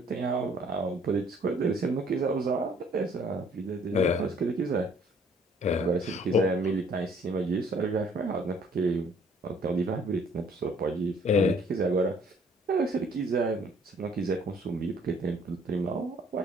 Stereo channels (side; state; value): both; normal; correlation 0.60